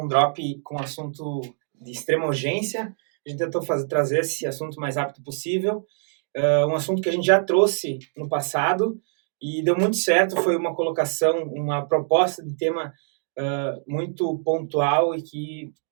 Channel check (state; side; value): silent; left; digital silence